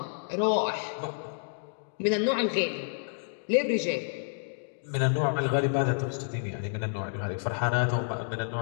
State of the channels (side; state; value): right; silent; digital silence